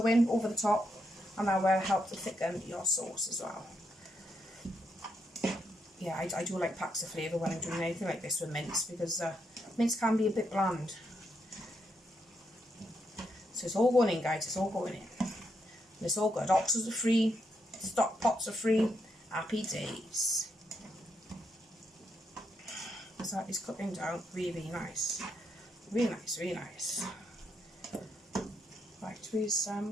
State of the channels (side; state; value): both; normal; correlation 0.79